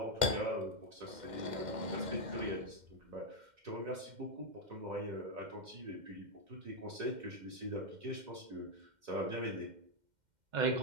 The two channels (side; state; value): left; late; 2.1 ms